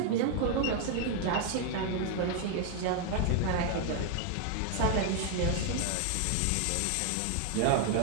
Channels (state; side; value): different; both; correlation 0.00